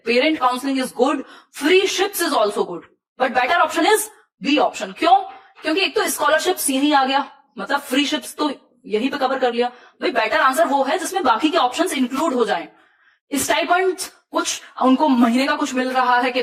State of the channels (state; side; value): identical; both; correlation 1.00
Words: Parent counselling is good, freeships is also good, but better option is B option. क्यों? क्योंकि एक तो स्कॉलरशिप्स यही आ गया, मतलब फ्री शिप्स तो यहीं पे कवर कर लिया। भाई बेटर आंसर वो है जिसमें बाकी के ऑप्शंस इंक्लूड हो जाएं। स्टाइपेंड कुछ उनको महीने का कुछ मिल रहा है कि